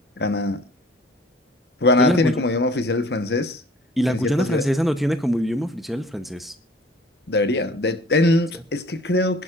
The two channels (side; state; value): both; normal; correlation 0.50